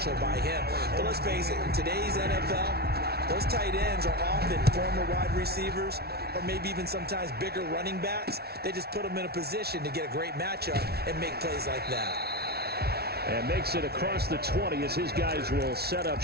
by him. But let's face it, in today's NFL, those tight ends are often former wide receivers or maybe even sometimes bigger running backs. They just put them in a position to get a great matchup and make plays like that. And makes it across the 20 as his guys will set up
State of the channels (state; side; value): late; left; 0.46 ms